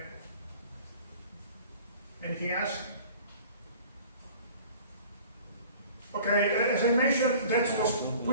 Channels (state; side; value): inverted; both; correlation -0.47